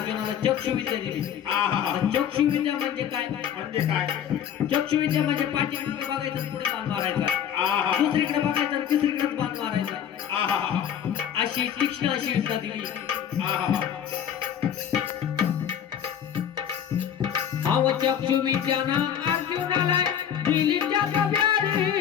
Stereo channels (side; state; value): right; quieter; 9.1 dB